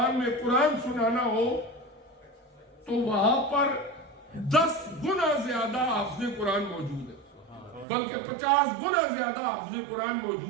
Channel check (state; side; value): drops out; left; at 7.9 s